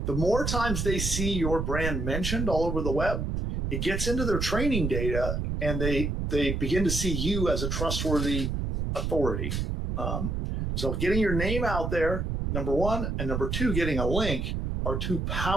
The more times they see your brand mentioned all over the web, it gets into their training data, and they begin to see you as a trustworthy authority. So getting your name out there, number one, and number two, getting a link are two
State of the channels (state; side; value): noise; right; rumble, 1 dB below the sound